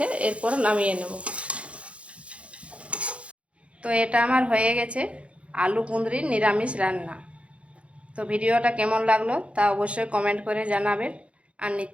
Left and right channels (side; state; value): left; late; 0.062 ms